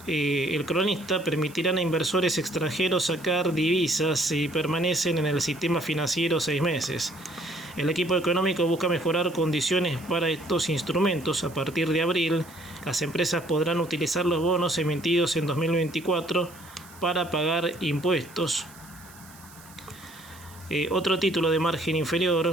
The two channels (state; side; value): noise; right; hiss, 22 dB below the sound